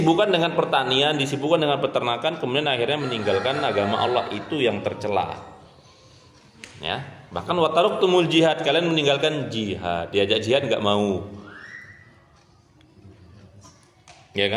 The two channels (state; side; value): identical; both; correlation 1.00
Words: dengan pertanian, disibukkan dengan peternakan, kemudian akhirnya meninggalkan agama Allah, itu yang tercela. Ya, bahkan wataruktumul jihad, kalian meninggalkan jihad, diajak jihad enggak mau. Ya